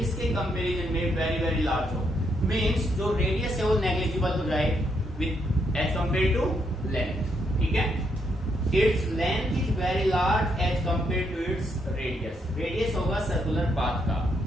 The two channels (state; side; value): normal; both; correlation 0.77